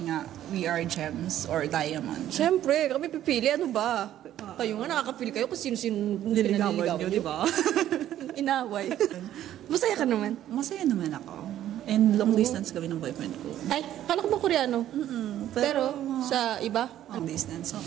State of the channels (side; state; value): left; quieter; 12.1 dB